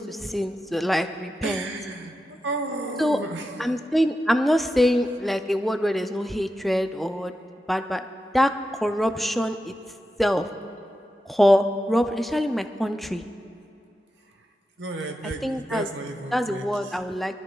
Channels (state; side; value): normal; both; correlation 0.89